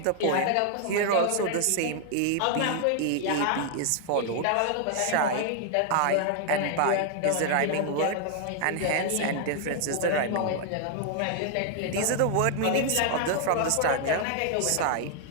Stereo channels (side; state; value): both; different; correlation 0.00